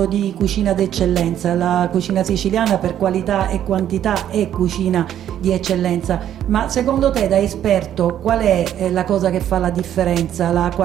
di cucina d'eccellenza, la cucina siciliana per qualità e quantità è cucina di eccellenza, ma secondo te da esperto qual è la cosa che fa la differenza, la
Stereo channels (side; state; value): left; quieter; 10.7 dB